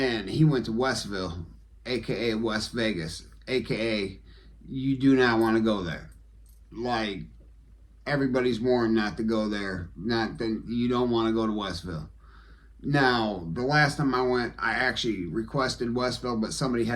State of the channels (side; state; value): both; identical; correlation 1.00